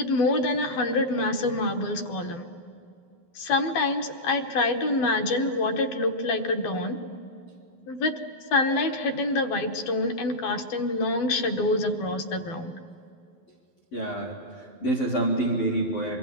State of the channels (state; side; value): late; right; 12 ms